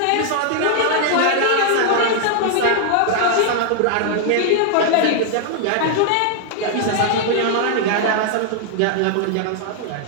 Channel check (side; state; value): both; different; correlation 0.00